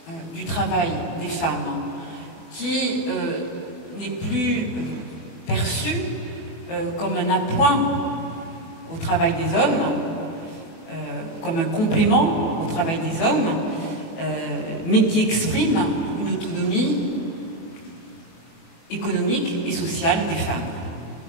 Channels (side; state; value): right; late; 24 ms